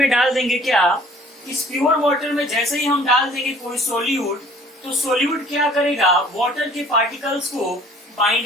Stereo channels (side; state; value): both; normal; correlation 0.53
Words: डाल देंगे, क्या, इस प्योर वाटर में जैसे ही हम डाल देंगे कोई सोल्यूट, तो सोल्यूट क्या करेगा, वाटर के पार्टिकल्स को